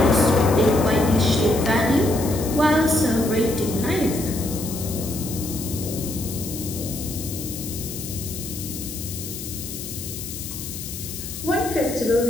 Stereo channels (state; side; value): noise; left; hiss, 9 dB below the sound